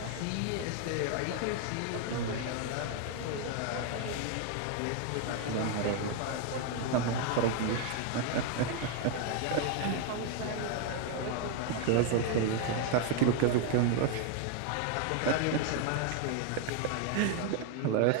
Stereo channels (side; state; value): both; different; correlation 0.00